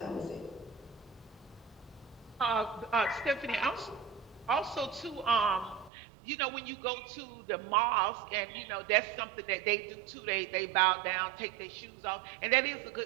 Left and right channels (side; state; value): left; drops out; at 5.9 s